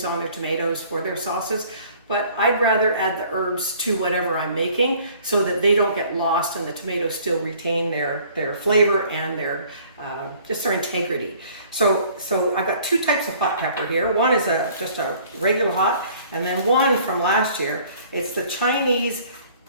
on their tomatoes for their sauces, but I'd rather add the herbs to whatever I'm making so that they don't get lost and the tomatoes still retain their flavor and their just their integrity. So I've got two types of hot pepper here. One is just a regular hot, and then one from last year. It's the Chinese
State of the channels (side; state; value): both; inverted; correlation -0.54